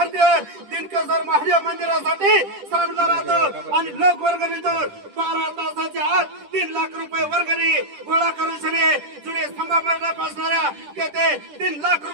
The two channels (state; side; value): late; left; 10 ms